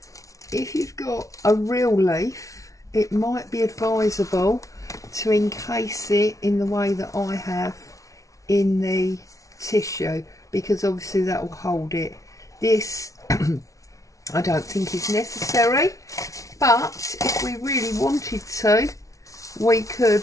If you've got a real leaf, it might be advisable to encase it in the way that I have in the tissue, because obviously that will hold it. This I don't think is necessary, but if we really wanted to, we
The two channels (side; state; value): right; late; 0.16 ms